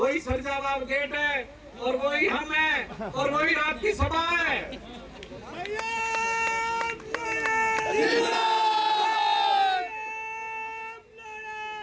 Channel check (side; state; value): both; identical; correlation 1.00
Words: सरजाबाद गेट है, और वही हम है, और वही रात की सभा है।